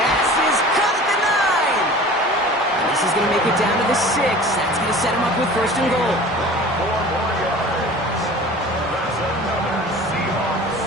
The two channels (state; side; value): normal; both; correlation 0.41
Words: is caught at the 9. And this is going to make it down to the 6. That's going to set him up with 1st and goal. 4 more yards. That's another Seahawks.